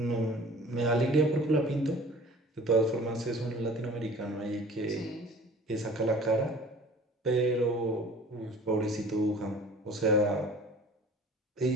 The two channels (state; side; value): normal; both; correlation 0.45